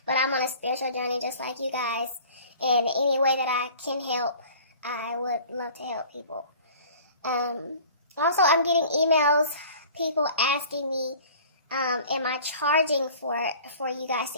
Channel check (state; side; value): inverted; both; correlation -0.47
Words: but I'm on a spiritual journey just like you guys, and any way that I can help, I would love to help people. Also, I'm getting emails, people asking me, am I charging for you guys